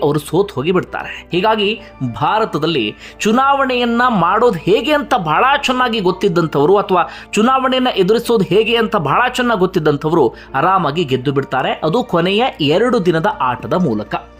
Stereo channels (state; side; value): identical; both; correlation 1.00